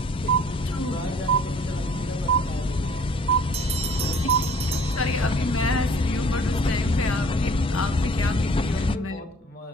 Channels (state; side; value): normal; both; correlation 0.54